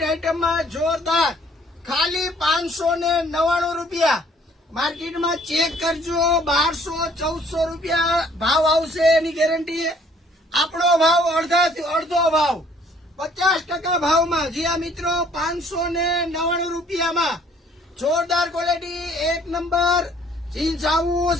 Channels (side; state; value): both; normal; correlation 0.59